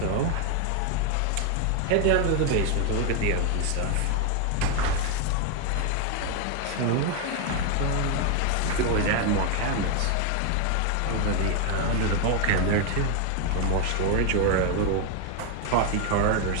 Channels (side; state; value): both; different; correlation 0.01